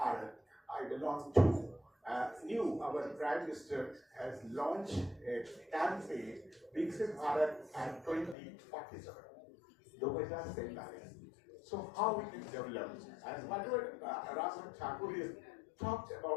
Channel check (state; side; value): drops out; right; at 8.3 s